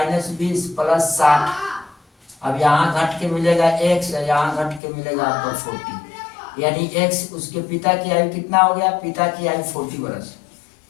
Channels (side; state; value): right; drops out; at 4.8 s